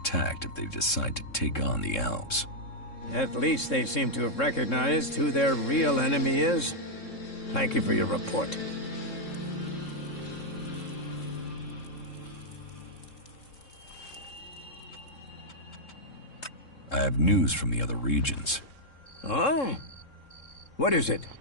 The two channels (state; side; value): late; right; 3.7 ms